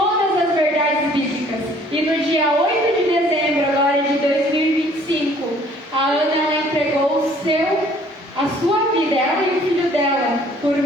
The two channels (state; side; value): normal; both; correlation 0.57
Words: as verdades bíblicas. E no dia 8 de dezembro agora de 2025, a Ana ela entregou a sua vida, ela e o filho dela, por